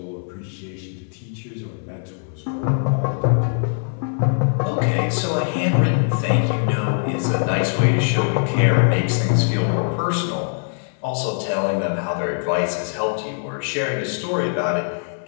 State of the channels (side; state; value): right; silent; 64 dB below the other